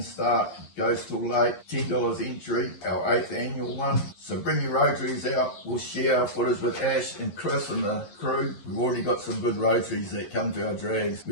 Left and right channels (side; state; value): right; late; 11 ms